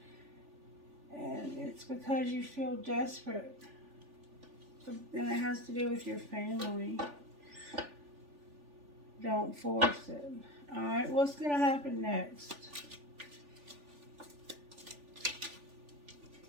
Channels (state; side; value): late; left; 3.4 ms